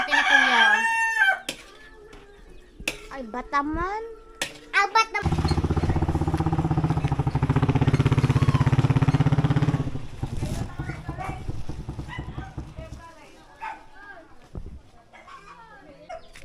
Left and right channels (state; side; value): identical; both; correlation 1.00